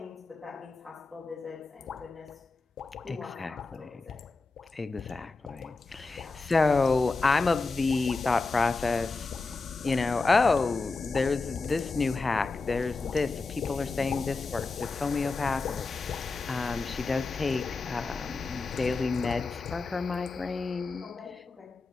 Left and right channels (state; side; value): quieter; right; 3.9 dB